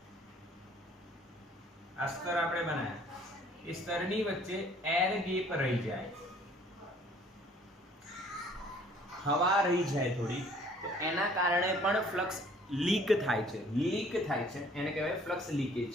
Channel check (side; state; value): both; normal; correlation 0.56